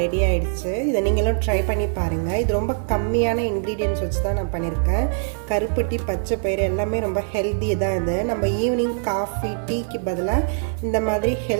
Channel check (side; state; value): left; silent; digital silence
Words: ஆகிடுச்சு. இதை நீங்களும் ட்ரை பண்ணி பாருங்கள். இது ரொம்ப கம்மியான இன்க்ரீடியன்ட்ஸ் வச்சு தான் நான் பண்ணியிருக்கேன். கருப்பட்டி பச்சை பயிறு எல்லாமே ரொம்ப ஹெல்த்தி தான். இது நம்ம ஈவினிங் காஃபி டீக்கு பதிலாக இந்த மாதிரி